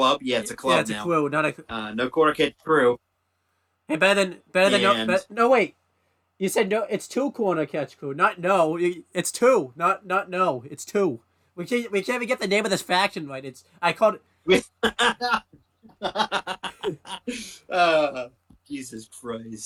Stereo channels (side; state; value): both; identical; correlation 1.00